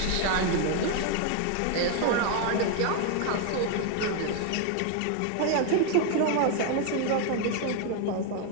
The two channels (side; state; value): both; different; correlation 0.00